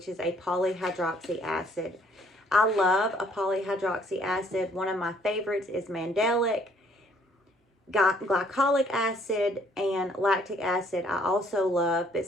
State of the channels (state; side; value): normal; both; correlation 0.63